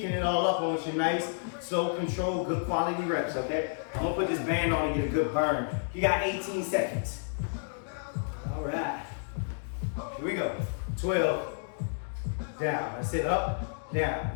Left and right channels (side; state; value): right; silent; digital silence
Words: it all up on you. Nice, slow, control, good quality reps, okay? I'm gonna put this band on and get a good burn. You got 18 seconds. All right. Here we go. 12. Down. That's it. Up,